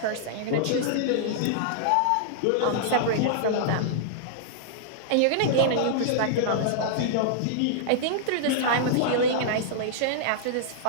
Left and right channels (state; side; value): different; both; correlation -0.01